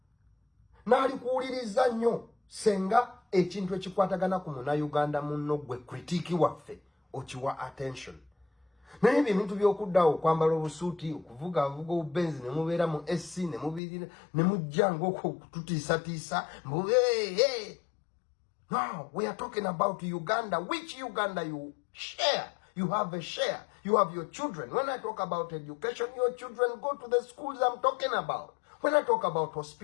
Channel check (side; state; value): right; drops out; at 13.8 s